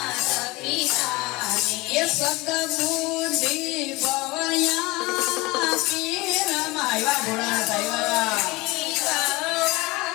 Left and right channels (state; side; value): quieter; right; 22.7 dB